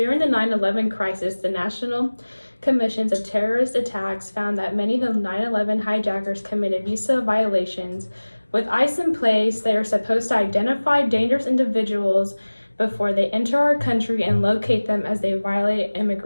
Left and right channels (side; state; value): both; inverted; correlation -1.00